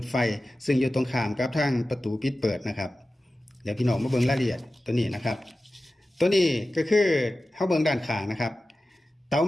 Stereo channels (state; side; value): normal; both; correlation 0.95